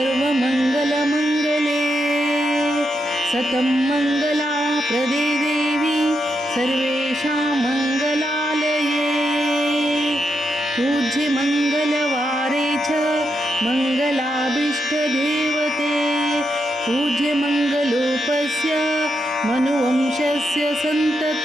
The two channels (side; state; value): both; normal; correlation 0.82